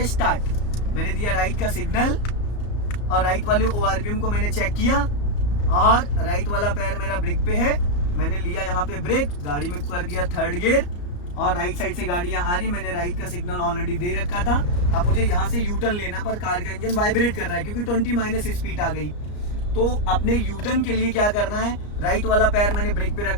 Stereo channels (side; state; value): right; late; 34 ms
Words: स्टार्ट। मैंने दिया राइट का सिग्नल और राइट वाले ओआरपीएम को मैंने चेक किया, और राइट वाला पैर मेरा ब्रेक पे है, मैंने लिया यहाँ पे ब्रेक, गाड़ी में कर दिया थर्ड गियर, और राइट साइड से गाड़ियां आ रही, मैंने राइट का सिग्नल ऑलरेडी दे रखा था। अब मुझे यहाँ से यू टर्न लेना, पर कार का इंजन वाइब्रेट कर रहा है क्योंकि 20 माइनस स्पीड आ गई। तो अपने यू टर्न के लिए क्या करना है, राइट वाला पैर मैंने ब्रेक पे